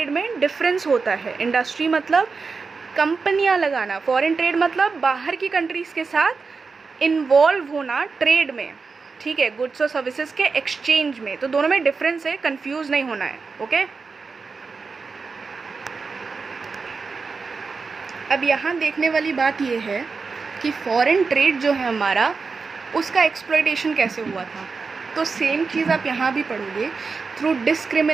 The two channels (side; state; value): left; quieter; 4.7 dB